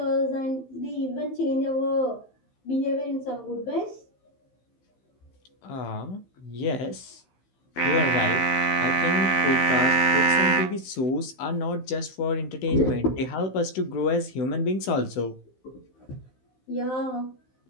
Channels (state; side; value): late; right; 15 ms